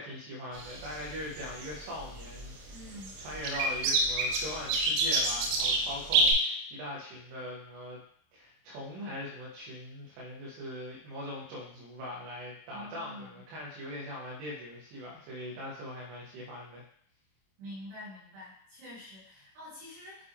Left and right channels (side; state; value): left; late; 26 ms